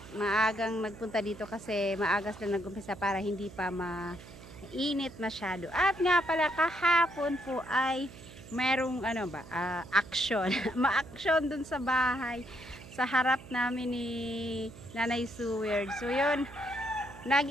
maagang nagpunta dito kasi maagas lang nag-umpisa para hindi pa mainit masyado. At nga pala kahapon po ay merong action. Ma-action dun sa bahay sa harap namin ni Nanay Suwerd. So yun,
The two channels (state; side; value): noise; right; hum, 17 dB below the sound